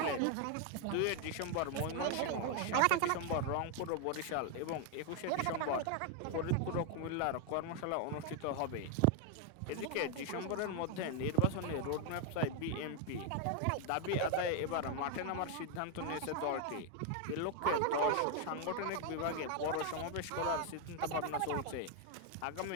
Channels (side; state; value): both; different; correlation 0.01